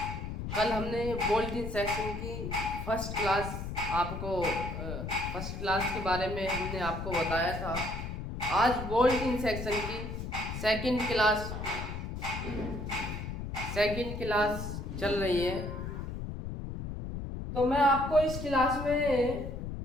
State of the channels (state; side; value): noise; left; rumble, 6 dB below the sound